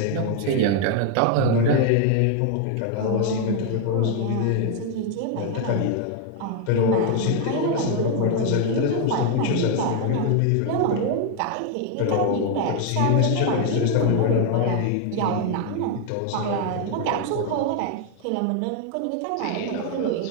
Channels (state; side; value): different; both; correlation 0.01